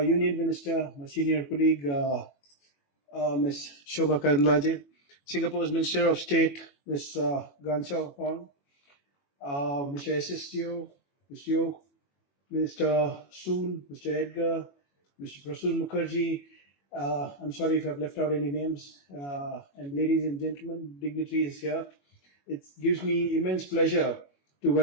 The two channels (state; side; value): late; right; 21 ms